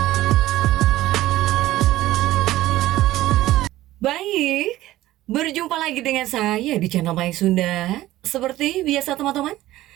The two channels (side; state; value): left; quieter; 15.8 dB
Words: Baik, berjumpa lagi dengan saya di channel Mai Sunda. Seperti biasa teman-teman,